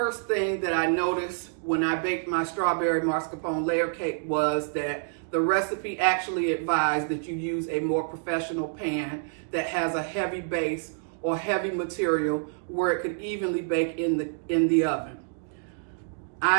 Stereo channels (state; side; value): silent; left; digital silence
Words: thing that I noticed when I baked my strawberry mascarpone layer cake was that the recipe actually advised that you use a more professional pan that has a heavy base or heavy material where it could evenly bake in the oven.